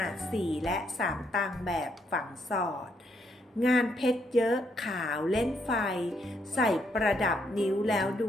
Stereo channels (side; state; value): both; normal; correlation 0.74